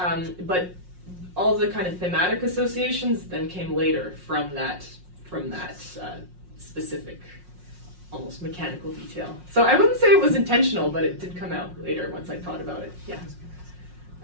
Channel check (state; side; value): late; left; 5.5 ms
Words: but all the kind of thematic associations then came later from that specific almost mechanical detail. So I wouldn't say it was intentional, but it did come out later once I thought about it. Yeah.